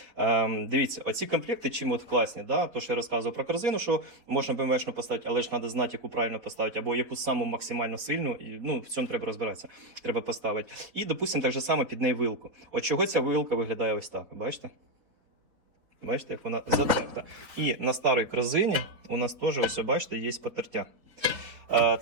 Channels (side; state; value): left; late; 3.8 ms